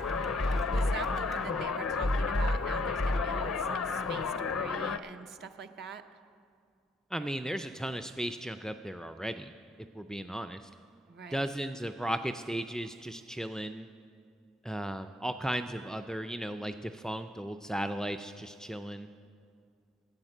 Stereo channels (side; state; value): both; normal; correlation 0.70